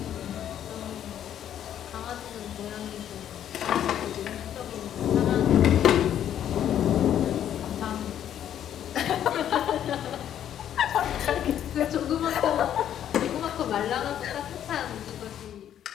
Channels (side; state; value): right; quieter; 10.4 dB